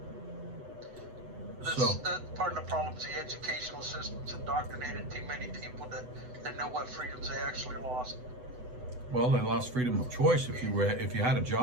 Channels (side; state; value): left; late; 8.0 ms